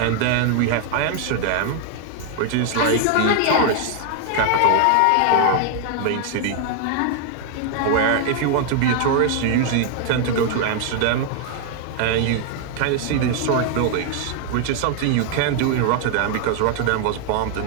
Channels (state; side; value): different; both; correlation 0.00